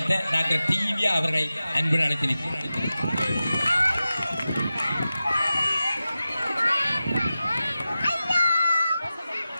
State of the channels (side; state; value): both; inverted; correlation -0.94